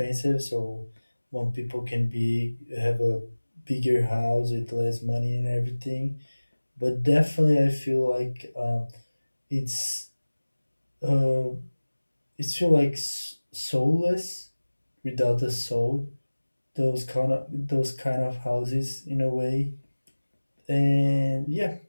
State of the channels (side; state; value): both; inverted; correlation -1.00